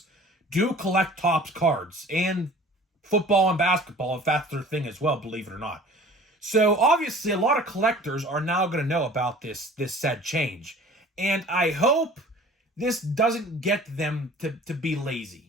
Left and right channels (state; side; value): normal; both; correlation 0.46